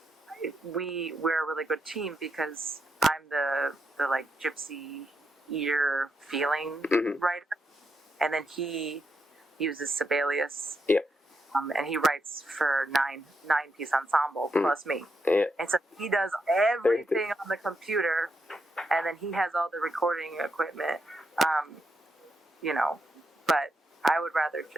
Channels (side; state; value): both; normal; correlation 0.82